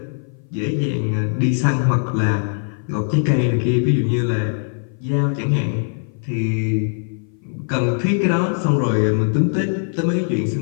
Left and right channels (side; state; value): right; silent; 58 dB below the other